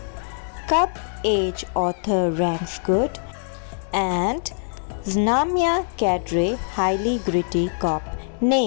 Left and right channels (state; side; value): silent; right; digital silence